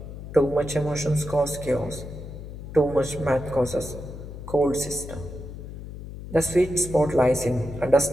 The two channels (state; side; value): noise; left; hum, 11 dB below the sound